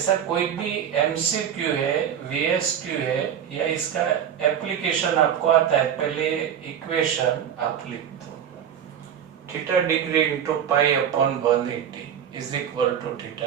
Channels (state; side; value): quieter; left; 8.9 dB